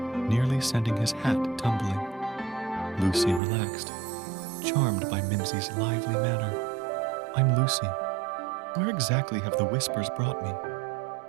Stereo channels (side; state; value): left; drops out; at 3.4 s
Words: sending his hat tumbling. Lucy relaxed, charmed by Mimsy's lively manner. "I'm Lucy. Where exactly have the whispers brought me?"